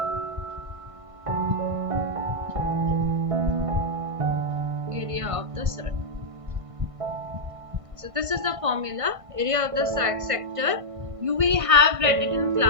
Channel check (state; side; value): late; left; 1.5 ms